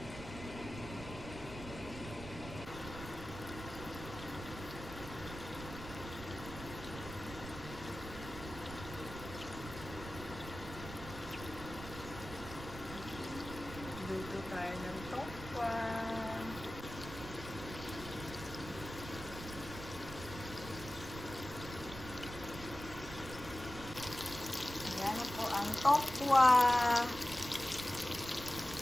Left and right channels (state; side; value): noise; right; rumble, 11 dB below the sound